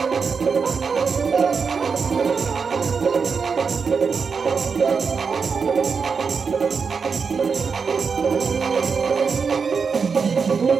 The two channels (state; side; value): quieter; left; 5.5 dB